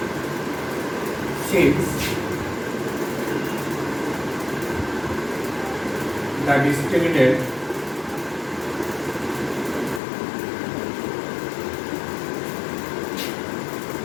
since the discriminant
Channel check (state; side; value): drops out; right; at 10.0 s